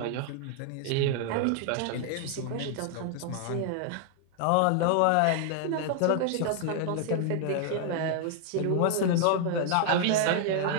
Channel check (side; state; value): both; different; correlation 0.00